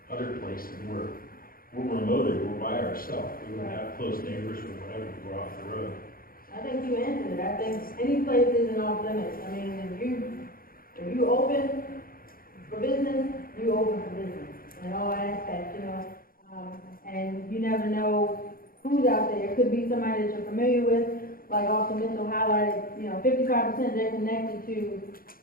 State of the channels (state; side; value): late; right; 0.42 ms